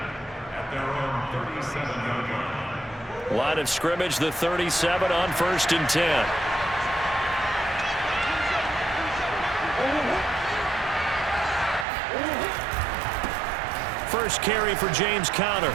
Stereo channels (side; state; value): left; drops out; at 11.9 s